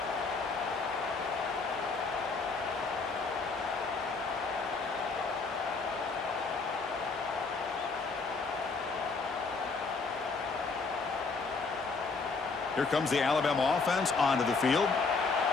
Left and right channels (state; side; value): quieter; right; 4.3 dB